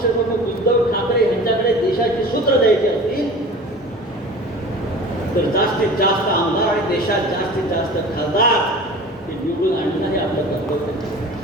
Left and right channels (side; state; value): both; normal; correlation 0.39